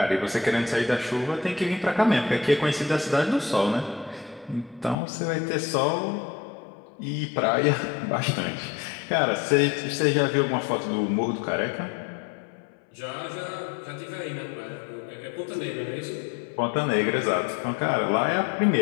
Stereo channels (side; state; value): right; drops out; at 5.0 s